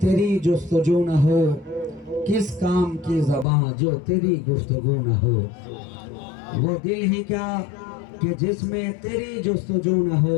जुस्तजू न हो, किस काम की ज़बां जो तेरी गुफ्तगू न हो। वो दिल ही क्या कि जिसमें तेरी जुस्तजू न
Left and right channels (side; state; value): right; drops out; at 3.5 s